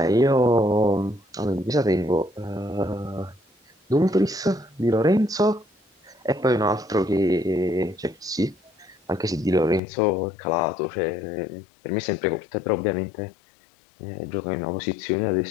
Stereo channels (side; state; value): right; drops out; at 9.8 s